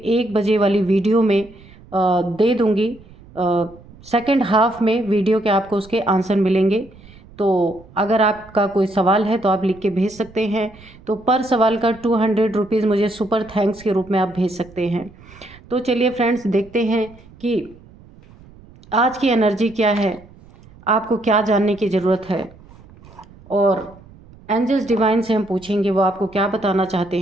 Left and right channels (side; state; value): right; noise; rumble, 23 dB below the sound